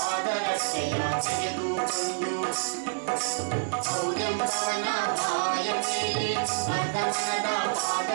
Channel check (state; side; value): silent; left; 60 dB below the other